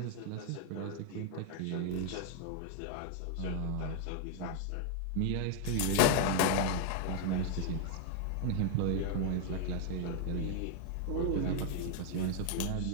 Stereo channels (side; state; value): both; different; correlation 0.00